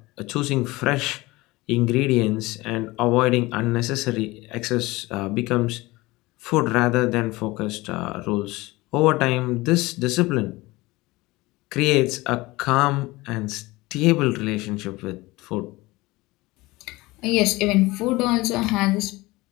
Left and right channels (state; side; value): quieter; right; 21.0 dB